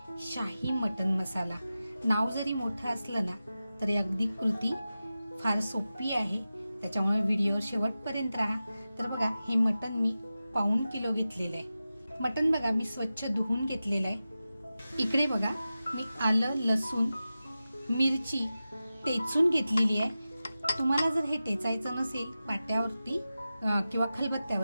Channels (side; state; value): both; inverted; correlation -0.94